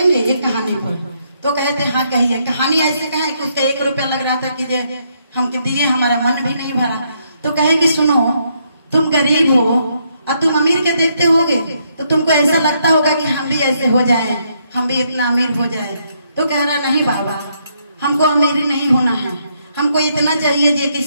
एक कहानी पर? तो कहते हाँ कहिए। कहानी ऐसे कहे कि उसका 1 रुपया लग रहा था कि हम दिए, हमारा मन भी नहीं भरा। तो कहे कि सुनो, तुम गरीब हो और तुम अमीर के देखते होगे तो तुमको ऐसा लगता होगा कि हम भी ऐसे हो जाएं, हम भी इतना अमीर हो जाएं। तो कह रहा नहीं बाबा, हमको अमीरी नहीं होना है, हमको इतना चाहिए जे कि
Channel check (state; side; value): inverted; both; correlation -0.74